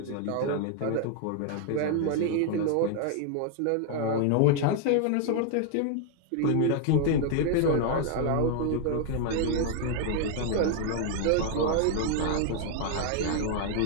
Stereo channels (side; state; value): both; different; correlation 0.00